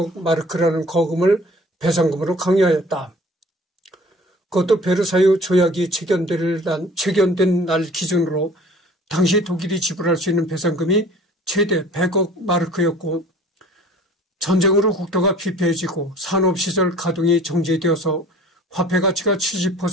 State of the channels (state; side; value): normal; both; correlation 0.49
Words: 마르크라는 거금을 배상금으로 강요하였다. 그것도 베르사유 조약이 체결된 날 기준으로 당시 독일이 지불할 수 있는 배상금이 최대 100억 마르크였고, 전쟁으로 국토가 피폐해지고 산업시설 가동이 정지되어서 화폐 가치가